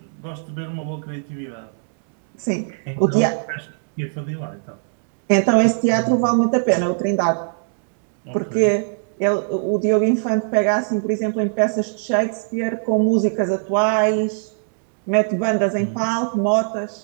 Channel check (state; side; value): silent; left; digital silence